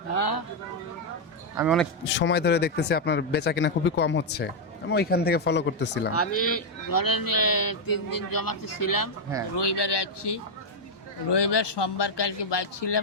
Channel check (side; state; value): both; normal; correlation 0.00